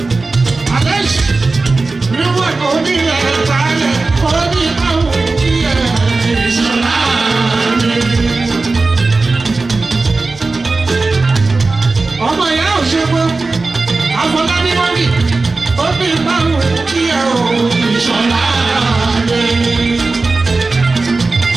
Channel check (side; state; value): left; quieter; 3.7 dB